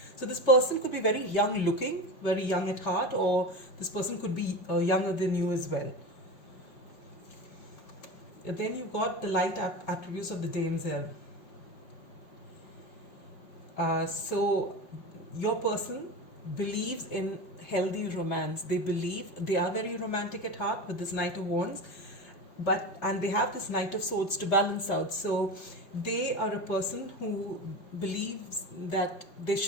So this person could be very young looking, very young at heart, or this person could be younger than you as well. And then you've got the light attributes of the damsel. So your person believes in healthy romance. They believe they are very romantic at heart with this Knight of Wands. and they have this Knight of Swords to balance out. So they are a person who believes that there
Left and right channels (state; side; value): late; right; 5.4 ms